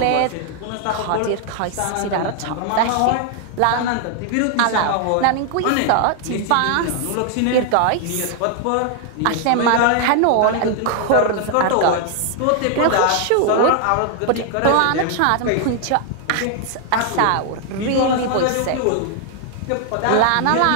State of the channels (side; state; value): both; different; correlation 0.00